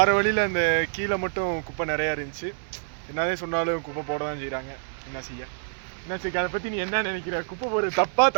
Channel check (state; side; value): silent; left; digital silence